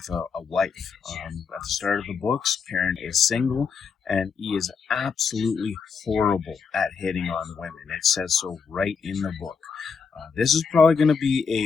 a wife. At the start of the books, Perrin is single, and he is absolutely horrible at hitting on women. It says so right in the book. This is probably going to be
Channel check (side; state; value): right; quieter; 5.7 dB